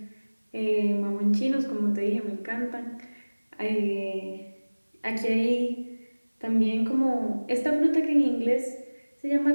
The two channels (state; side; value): inverted; both; correlation -1.00